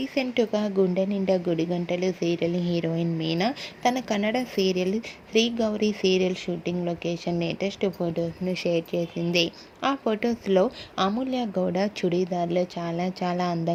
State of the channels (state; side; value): identical; both; correlation 1.00